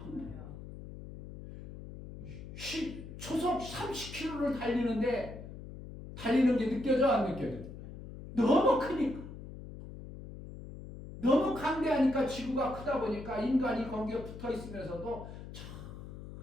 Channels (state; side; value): noise; left; hum, 12 dB below the sound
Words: 초속 30km를 달리는 게 느껴져 안 느껴져? 너무 크니까. 너무 강대하니까 지구가 크다 보니까 인간이 거기에 붙어 있으면서도